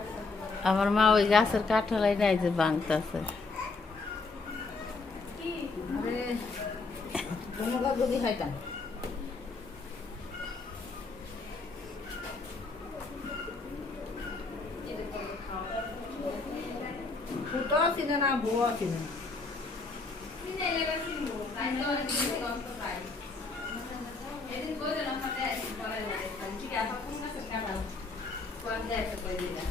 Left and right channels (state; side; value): quieter; right; 3.9 dB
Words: আমার মা ওই গাছের কাঁঠালাই নাই যে ভাঙতেছে।